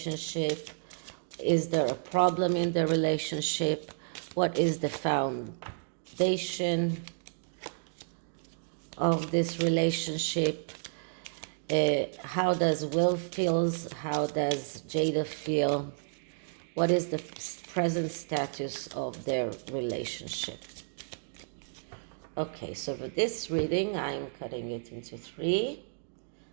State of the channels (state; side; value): silent; left; digital silence